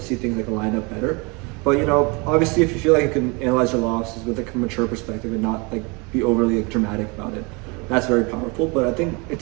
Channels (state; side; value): quieter; left; 29.2 dB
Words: things like line up better. But obviously, if you feel like you can analyze your losses with like a mature perspective and not like be overly dramatic about it, that's very powerful. But I think it